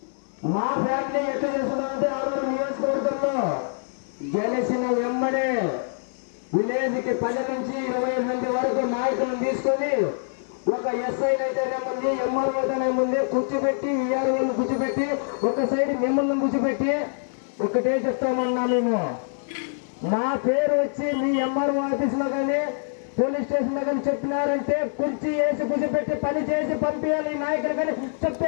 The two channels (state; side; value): silent; right; 62 dB below the other